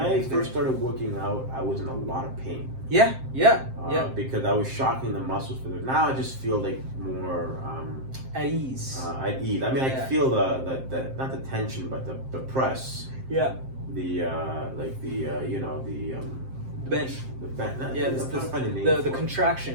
I first started working out, I was in a lot of pain. Because I was shocking the muscles for this. Now I just feel like more at ease. At ease. I mean, I feel the not the tension, but the press. Yeah. The bench. The bench. The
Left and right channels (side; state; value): left; late; 7.6 ms